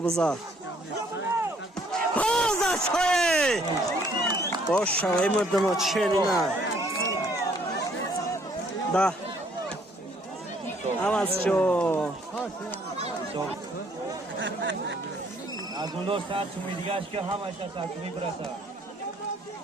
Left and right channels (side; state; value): both; normal; correlation 0.63